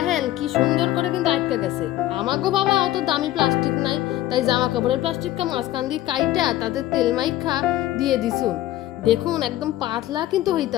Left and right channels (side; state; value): right; quieter; 14.6 dB